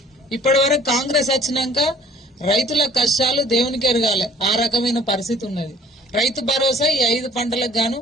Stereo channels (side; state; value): both; normal; correlation 0.53